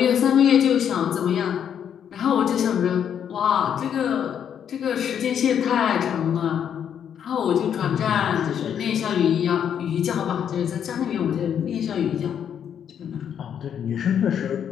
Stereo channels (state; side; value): quieter; right; 8.7 dB